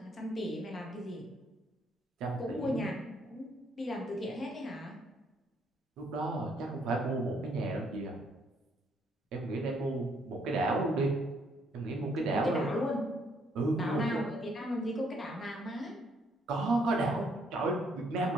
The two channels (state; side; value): normal; both; correlation 0.69